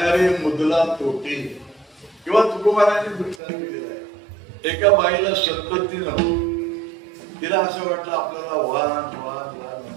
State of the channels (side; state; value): left; drops out; at 3.4 s